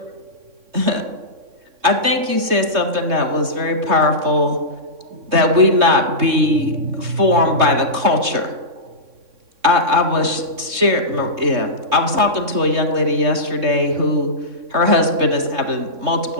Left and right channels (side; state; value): left; late; 3.3 ms